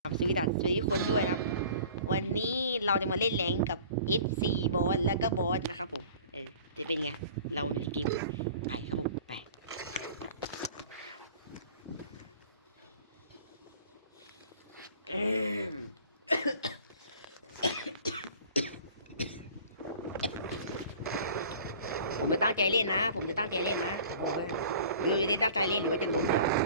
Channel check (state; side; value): inverted; both; correlation -0.46